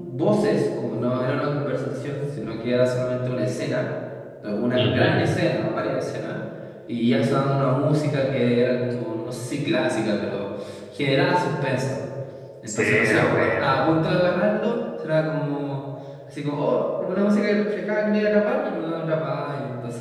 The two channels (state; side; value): identical; both; correlation 1.00